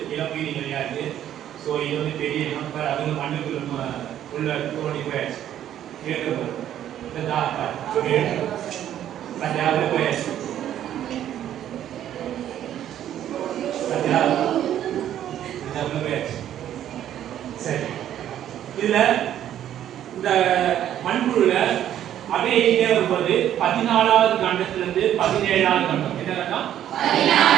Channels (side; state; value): left; quieter; 11.1 dB